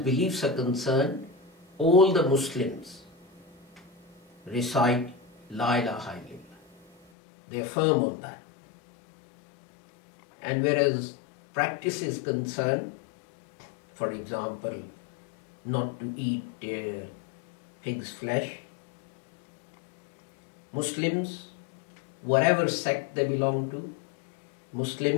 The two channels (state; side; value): drops out; right; at 7.0 s